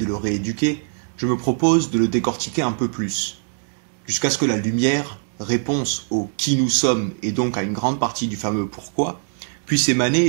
le rééduquer, je me propose de le décortiquer un peu plus, jusqu'à ce que la lumière, réponse au qui nous sommes et donc à une grande partie du fameux pourquoi, puisse émaner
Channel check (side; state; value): left; silent; digital silence